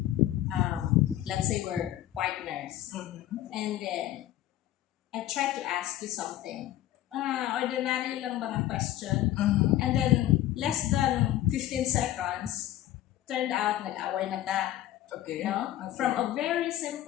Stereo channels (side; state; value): right; quieter; 13.5 dB